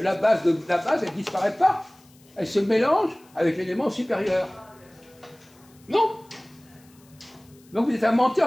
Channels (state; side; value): noise; left; hiss, 29 dB below the sound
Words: base, elle ne disparaît pas. Elle se mélange avec l'élément supérieur. Non? Donc vous êtes un